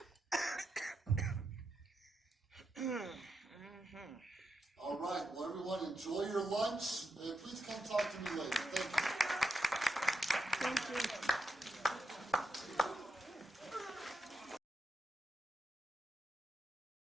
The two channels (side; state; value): both; normal; correlation 0.85